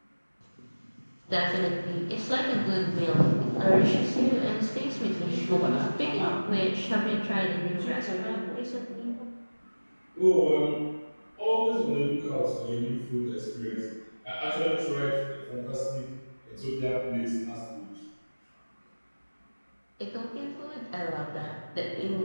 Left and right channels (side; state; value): both; inverted; correlation -1.00